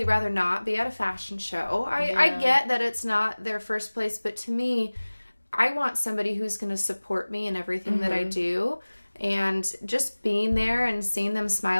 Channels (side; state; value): both; inverted; correlation -1.00